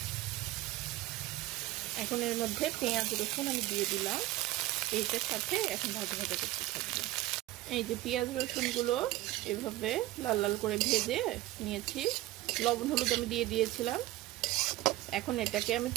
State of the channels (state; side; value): quieter; left; 16.9 dB